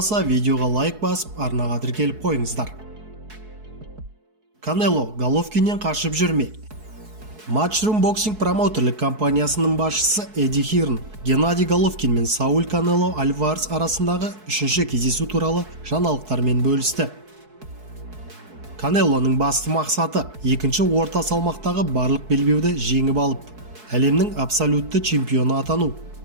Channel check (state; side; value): late; left; 4.7 ms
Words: видеоға лайк басып, арнаға тіркеліп қойыңыздар. Канело Головкиннен қашып жүрме. Matchroom Boxing промоутерлік компаниясының басшысы Эдди Хирн Геннадий Головкин мен Сауль Канело Альварес арасындағы үшінші кездесу туралы жаңалықтармен бөлісті. Канелоның басты мақсаты екінші орта салмақтағы барлық белбеуді жеңіп алып, әлемнің абсолютті чемпионы атану.